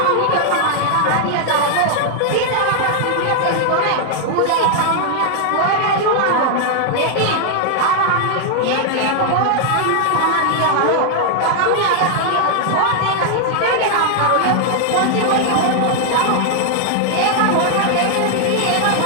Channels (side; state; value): both; different; correlation 0.00